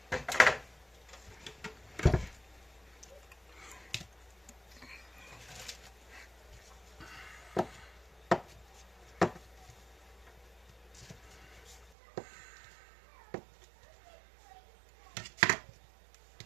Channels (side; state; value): left; drops out; at 11.9 s